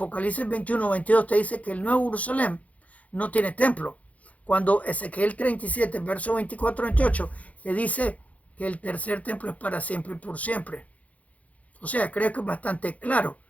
21-22 te dice que el Nuevo Jerusalén no tiene templo. Cuando Ezequiel 37, verso 24-28, te dice que el tercer templo es para siempre y por siempre. O sea, creo que es bastante claro.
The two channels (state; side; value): late; right; 0.069 ms